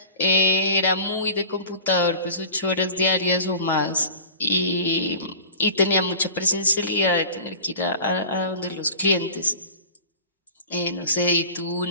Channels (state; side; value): inverted; both; correlation -0.40